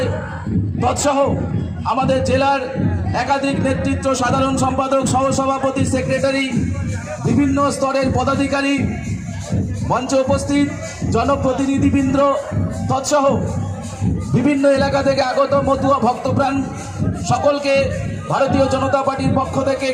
তৎসহ আমাদের জেলার একাধিক নেতৃত্ব, সাধারণ সম্পাদক, সহসভাপতি, সেক্রেটারি, বিভিন্ন স্তরের পদাধিকারী, মঞ্চে উপস্থিত জনপ্রতিনিধিবৃন্দ তৎসহ বিভিন্ন এলাকা থেকে আগত মতুয়া ভক্তপ্রাণ সকলকে ভারতীয় জনতা পার্টির পক্ষ থেকে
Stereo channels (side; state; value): both; identical; correlation 1.00